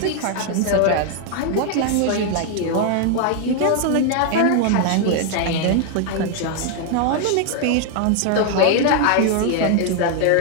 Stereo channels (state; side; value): different; both; correlation 0.00